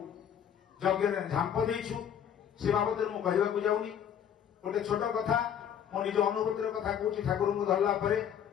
यज्ञ झांप देचु से बाबद में कहवाक जाऊनी गोटे छोट कथा मो निज अनुभूतिर कथा कहूँ ठाकुर को धरला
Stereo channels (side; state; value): right; quieter; 8.8 dB